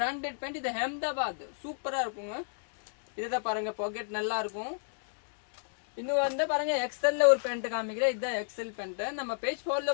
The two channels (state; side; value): silent; right; digital silence